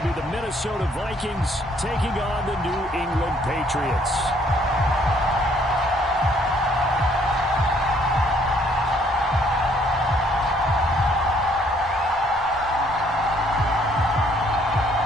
be the Minnesota Vikings taking on the New England Patriots.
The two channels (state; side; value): normal; both; correlation 0.64